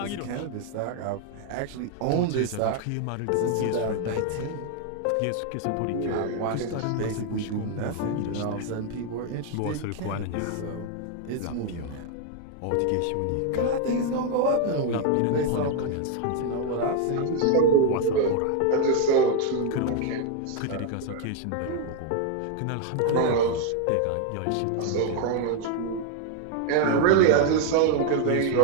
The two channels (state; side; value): different; both; correlation 0.01